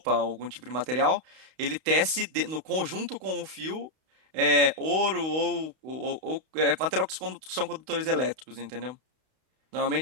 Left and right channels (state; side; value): late; left; 32 ms